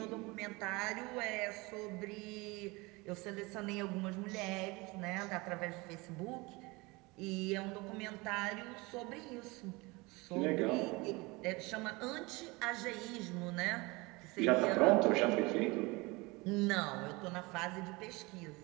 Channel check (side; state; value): left; quieter; 24.6 dB